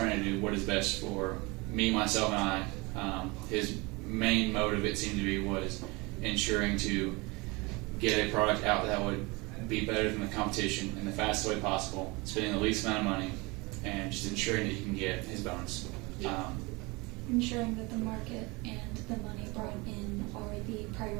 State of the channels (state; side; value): quieter; left; 25.6 dB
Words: to do what is best for me, myself, and I. His main motive, it seemed to be, was ensuring to get a product out that would be better than the competition in the fastest way possible, spending the least amount of money, and just ensuring that he can get his bonus. Ensuring that the market and the money brought in are the